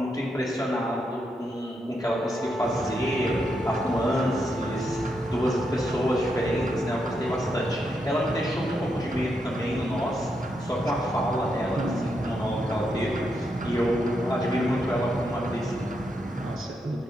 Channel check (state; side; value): normal; both; correlation 0.81